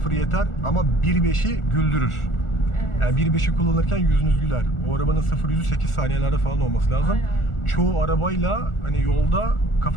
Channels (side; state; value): right; late; 1.4 ms